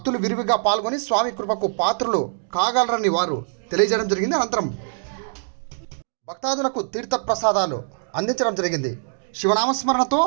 విరివిగా పాల్గొని స్వామి కృపకు పాత్రలు కాగలరని వారు తెలియజేయడం జరిగింది. అనంతరం భక్తాదులకు తీర్థ ప్రసాదాలు అందించడం జరిగింది. శివనామస్మరణతో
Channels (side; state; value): left; silent; digital silence